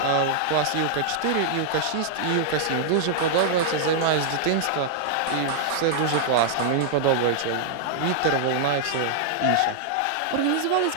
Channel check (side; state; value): both; different; correlation -0.01